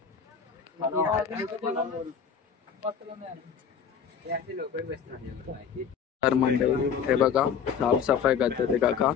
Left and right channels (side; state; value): right; quieter; 7.1 dB